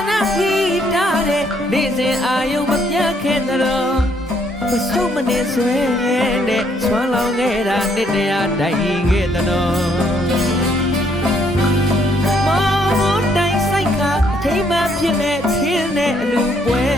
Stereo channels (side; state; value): both; normal; correlation 0.69